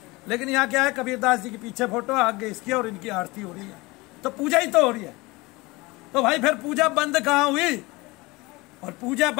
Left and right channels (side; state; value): right; quieter; 22.9 dB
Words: लेकिन यहाँ क्या है, कबीरदास जी के पीछे फोटो, आगे इसकी, और इनकी आरती हो रही है, तो पूजा ही तो हो रही है। तो भाई फिर पूजा बंद कहाँ हुई। और पूजा